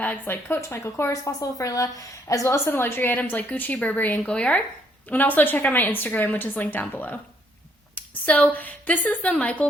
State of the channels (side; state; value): both; normal; correlation 0.69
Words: like Coach, Michael Kors, Fossil, Furla, as well as some luxury items like Gucci, Burberry, and Goyard. And also check out my Instagram, which is linked down below. So this is the